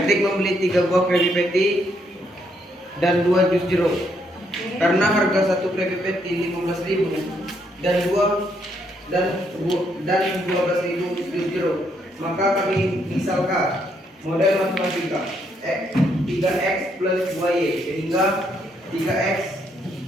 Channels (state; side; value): normal; both; correlation 0.74